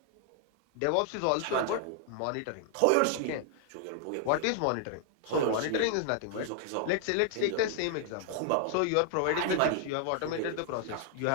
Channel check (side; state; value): both; different; correlation 0.00